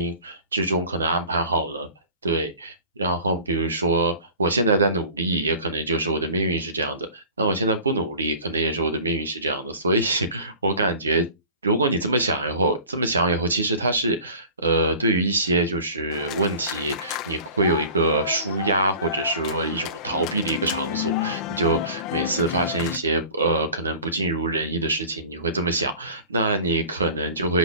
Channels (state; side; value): inverted; both; correlation -0.42